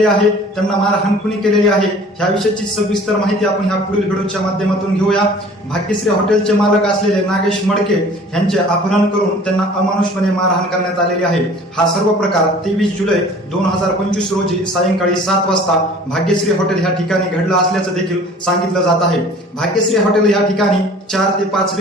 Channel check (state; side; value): normal; both; correlation 0.48